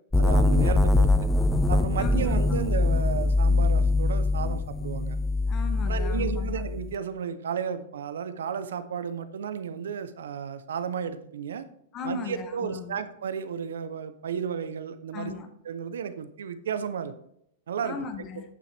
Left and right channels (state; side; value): normal; both; correlation 0.61